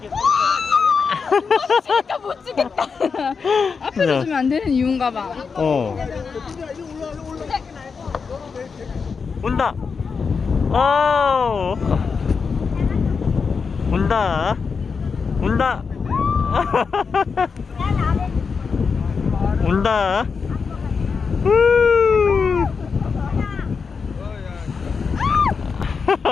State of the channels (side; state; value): right; quieter; 5.4 dB